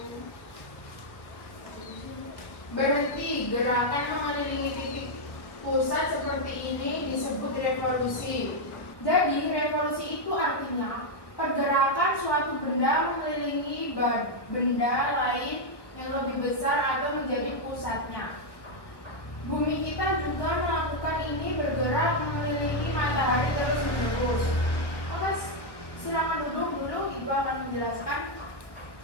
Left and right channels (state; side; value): late; right; 1.1 ms